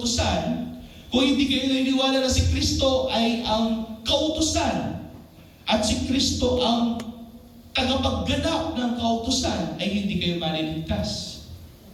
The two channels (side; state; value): both; identical; correlation 1.00